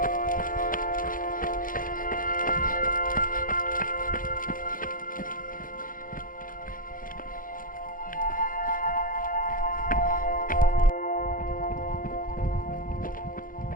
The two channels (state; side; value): late; right; 0.40 ms